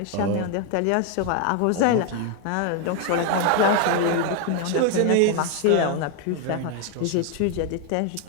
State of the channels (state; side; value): different; both; correlation 0.01